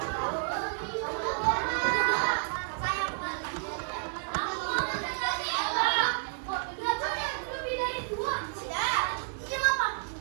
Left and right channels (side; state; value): left; silent; 57 dB below the other